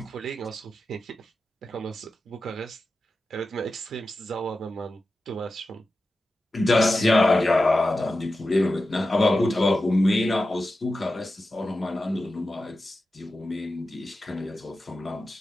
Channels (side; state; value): both; normal; correlation 0.92